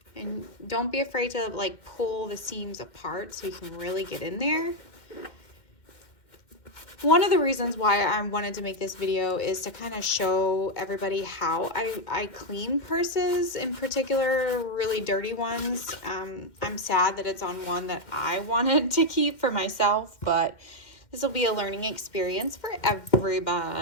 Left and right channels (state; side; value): late; right; 2.1 ms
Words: And don't be afraid to like pull the seams apart so you can really get in there. One of the reasons why I wanted to make this video is to kind of show everybody how I clean purses, in particular really dirty ones. I'm sad that it's on one that I wanted to keep for myself, but this will be a learning experience for